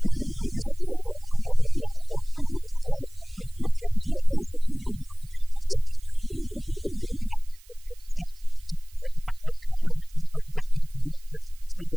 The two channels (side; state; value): right; noise; hiss, 27 dB below the sound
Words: Totally a different racetrack than a night ago. Discuss the differences and how you had to attack it. Last night, 35 laps, I couldn't hardly breathe when we got done. Tonight we had a lot